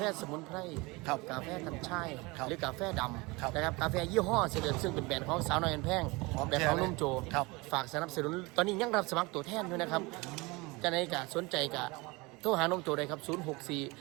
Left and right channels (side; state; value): left; quieter; 24.6 dB